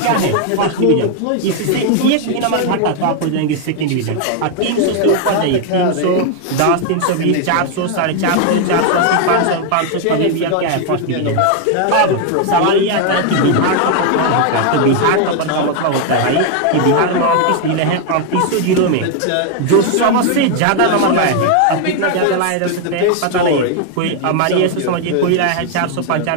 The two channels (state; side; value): different; both; correlation 0.00